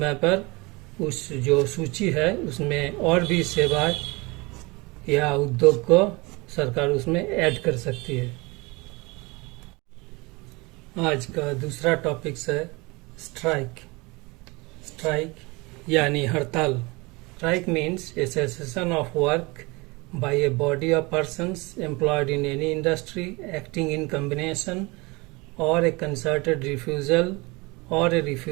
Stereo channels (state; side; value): quieter; left; 25.2 dB